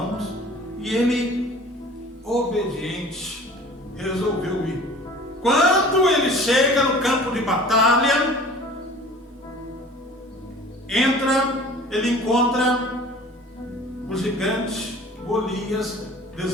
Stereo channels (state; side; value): normal; both; correlation 0.45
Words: E ele, obediente, resolveu ir. Quando ele chega no campo de batalha, ele encontra o gigante Golias